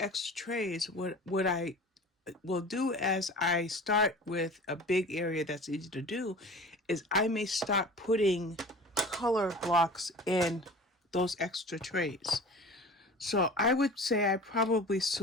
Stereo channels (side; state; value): both; normal; correlation 0.40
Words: trays, what I will do as I start with a big area that's easy to do is I may start putting color blocks in those extra trays. So I would say I probably